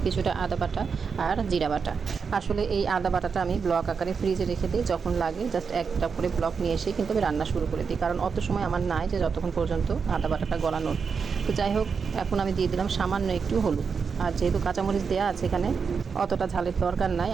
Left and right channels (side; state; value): left; quieter; 5.7 dB